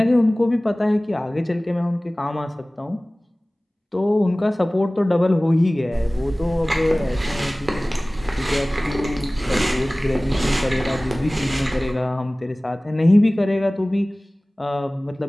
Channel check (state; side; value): normal; both; correlation 0.98